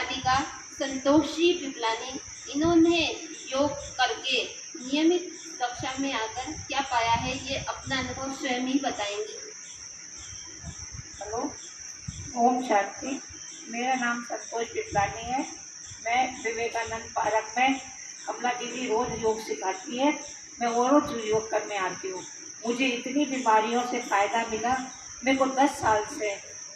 संतोष जी पिपलानी। इन्होंने योग करके नियमित कक्षा में आकर क्या पाया है, ये अपना अनुभव स्वयं ही बताएंगी। हेलो, ओम शांति। मेरा नाम संतोष पिपलानी है। मैं विवेकानंद पार्क में कमला दीदी रोज योग सिखाती है, मैं वो रोज योग करने आती हूँ। मुझे इतनी बीमारियों से फ़ायदा मिला। मेरे को 10 साल से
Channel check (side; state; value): both; identical; correlation 1.00